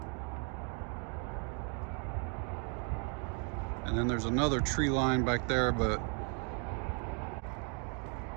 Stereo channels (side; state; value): left; quieter; 39.7 dB